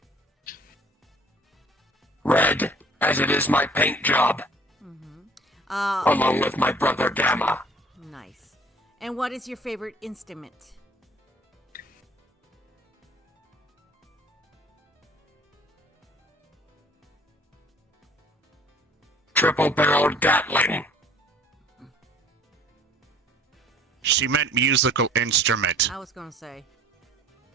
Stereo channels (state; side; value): normal; both; correlation 0.53